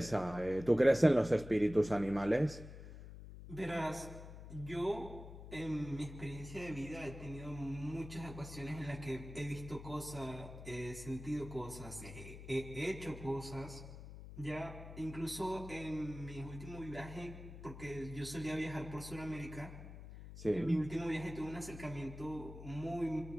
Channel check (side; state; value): left; noise; hum, 12 dB below the sound